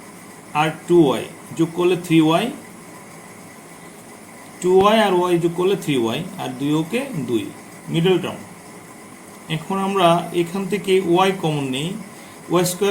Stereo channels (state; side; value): identical; both; correlation 1.00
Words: আর 2y যোগ করলে 3y, 2y আর y যোগ করলে 3y, আর 2 ওকে 2, মিডল টার্ম। এখন আমরা এখান থেকে y কমন নেই, ওয়াই